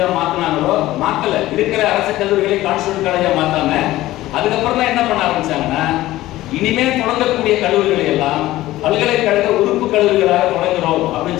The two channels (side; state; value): right; quieter; 16.2 dB